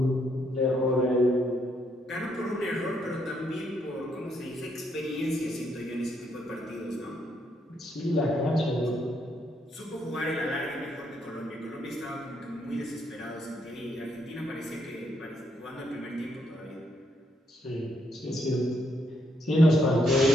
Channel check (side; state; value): both; normal; correlation 0.75